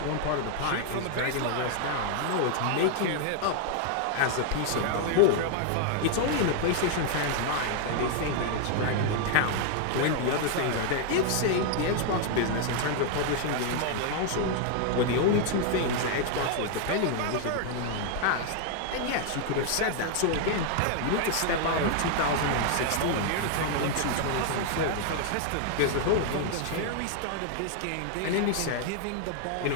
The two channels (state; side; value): different; both; correlation 0.00